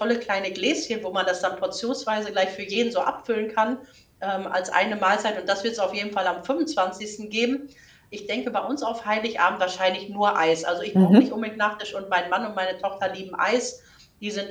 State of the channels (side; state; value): both; identical; correlation 1.00